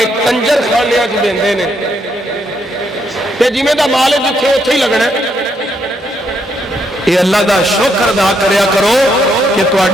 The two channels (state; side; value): normal; both; correlation 0.75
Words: کنجر خانے وچ دیندے نے تے جویں دا مال جتھے اوتھے ہی لگنا ہے. اے اللہ دا شکر ادا کریا کرو کہ